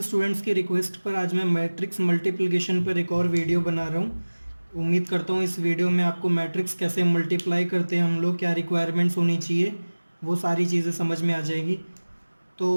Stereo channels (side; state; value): both; inverted; correlation -1.00